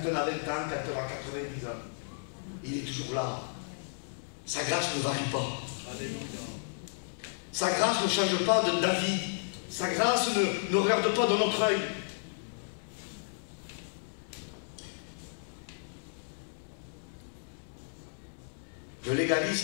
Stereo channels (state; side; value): silent; right; 56 dB below the other